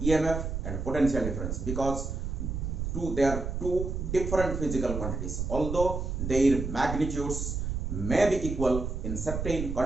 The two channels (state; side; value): noise; right; rumble, 3 dB below the sound